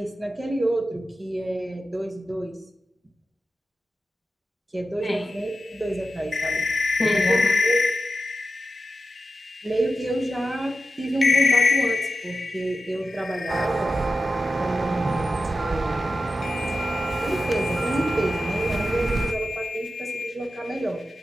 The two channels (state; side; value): normal; both; correlation 0.92